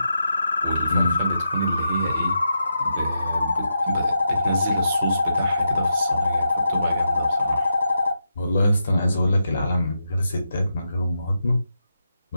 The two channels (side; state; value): both; inverted; correlation -0.85